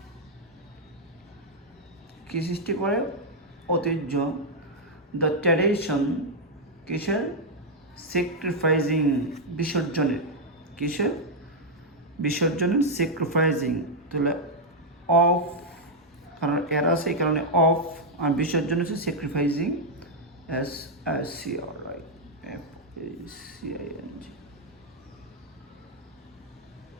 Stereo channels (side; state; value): both; normal; correlation -0.02